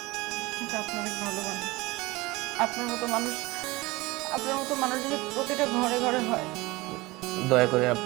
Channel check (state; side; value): quieter; left; 21.5 dB